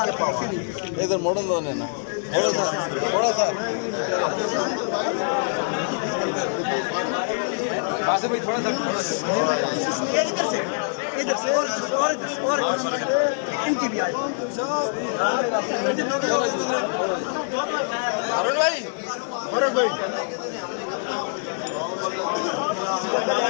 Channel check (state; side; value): silent; right; digital silence